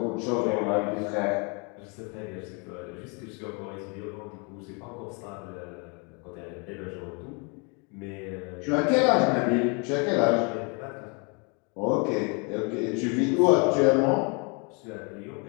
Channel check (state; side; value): quieter; right; 33.4 dB